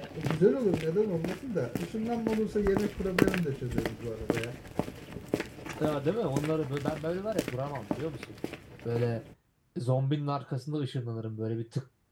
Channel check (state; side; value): identical; both; correlation 1.00